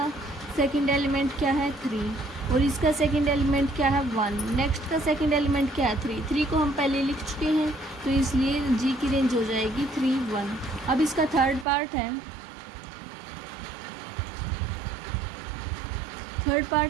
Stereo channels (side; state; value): left; drops out; at 11.7 s